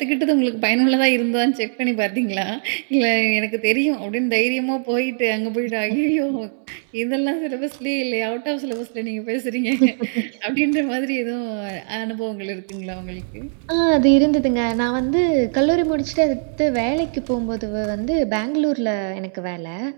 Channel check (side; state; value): left; silent; digital silence